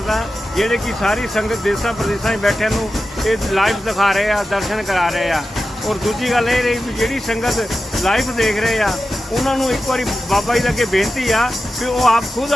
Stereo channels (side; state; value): both; normal; correlation 0.92